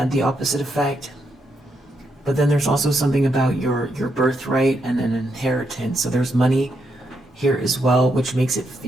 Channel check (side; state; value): both; normal; correlation 0.80